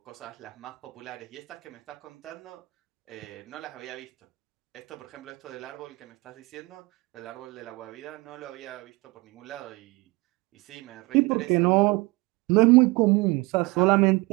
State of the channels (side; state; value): left; quieter; 23.9 dB